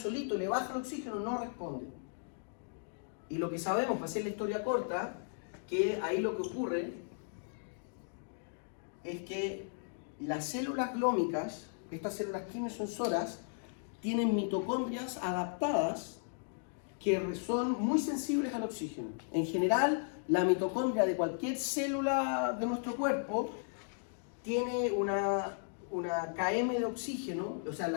le baja el oxígeno, no responde. Y lo que sabemos, para hacer la historia corta, que ahí lo que ocurre es que las células glómicas, estas células quimiosensoras, tienen mitocondrias adaptadas que son muy sensibles al oxígeno. En general, la mitocondria de cualquier célula de nuestro cuerpo tiene una km de oxígeno, o sea,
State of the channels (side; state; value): right; silent; digital silence